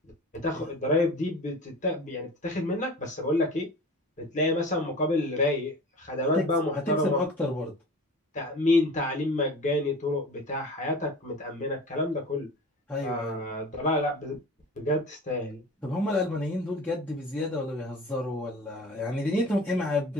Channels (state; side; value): normal; both; correlation 0.37